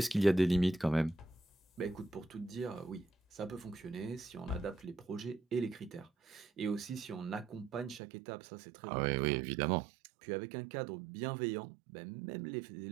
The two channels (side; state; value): left; drops out; at 8.0 s